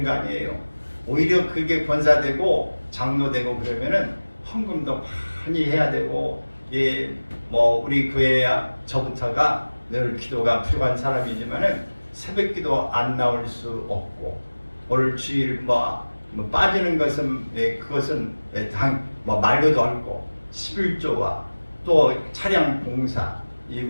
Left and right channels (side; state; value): both; inverted; correlation -1.00